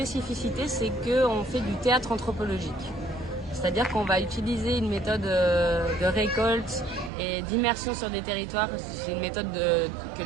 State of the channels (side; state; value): left; drops out; at 7.1 s